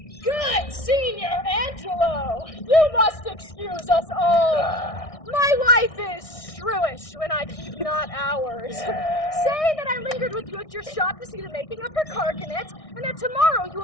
Good Senior Angelo, you must excuse us all. My wife is shrewish when I keep not hours. Say that I lingered with you at your shop to see the making of her carcanet, and that tomorrow you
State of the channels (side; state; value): right; late; 1.6 ms